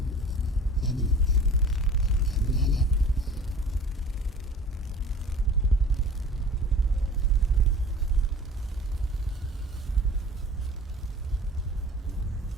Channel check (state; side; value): normal; both; correlation 0.44